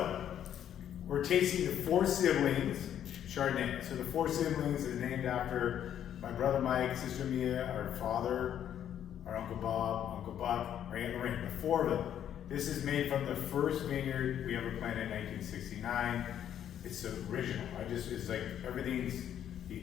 we're tasting the Four Siblings Chardonnay. So the Four Siblings is named after my brother Mike, sister Mia, our father, our Uncle Bob, Uncle Buck, our Aunt Lorraine, the four of them. This is made from the first vineyard we ever planted in 1969. It's the original. It's like everything's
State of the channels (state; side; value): quieter; right; 10.1 dB